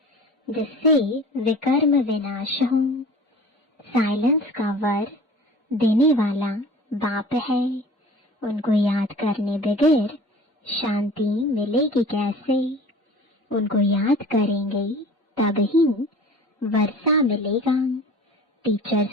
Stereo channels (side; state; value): both; normal; correlation 0.42